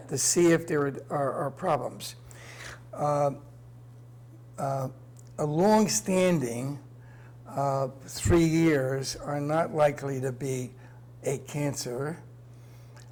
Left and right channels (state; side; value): identical; both; correlation 1.00